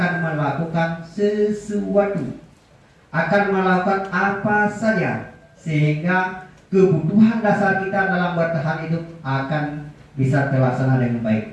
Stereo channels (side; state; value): both; identical; correlation 1.00